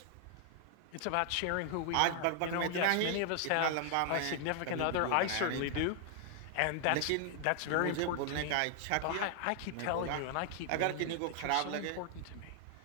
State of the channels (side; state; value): both; different; correlation 0.00